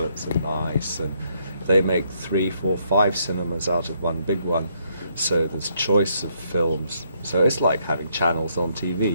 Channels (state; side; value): inverted; both; correlation -0.73